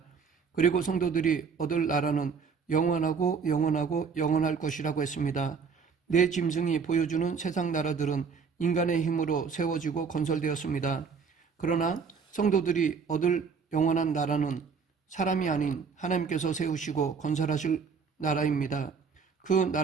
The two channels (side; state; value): left; quieter; 5.6 dB